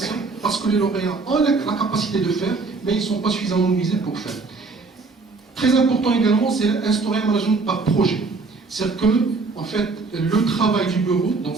parce que les lauréats ont la capacité de faire, mais ils ne sont pas suffisamment mobilisés pour faire. Très important également, c'est instaurer un management par projet. C'est-à-dire que, en fait, le travail du bureau, dans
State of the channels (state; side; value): quieter; left; 4.0 dB